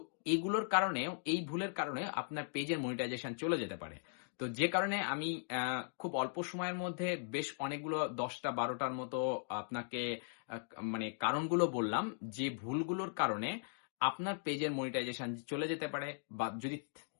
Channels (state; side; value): silent; right; digital silence